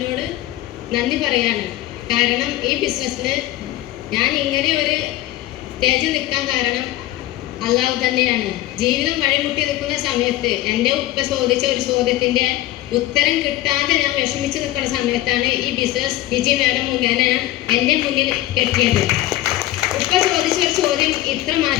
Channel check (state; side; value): quieter; right; 15.2 dB